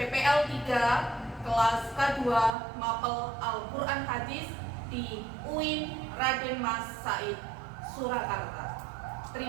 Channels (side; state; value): left; drops out; at 2.6 s